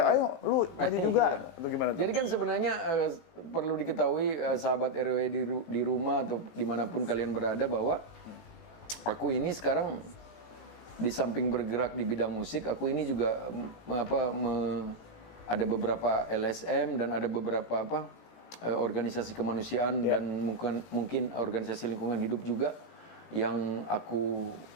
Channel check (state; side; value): late; right; 18 ms